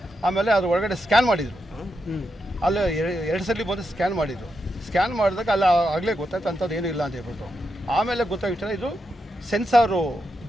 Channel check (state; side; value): normal; both; correlation 0.85